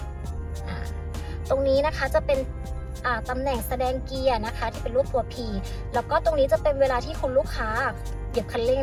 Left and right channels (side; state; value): both; identical; correlation 1.00